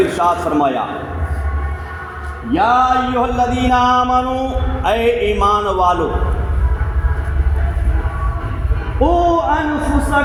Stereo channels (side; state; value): both; identical; correlation 1.00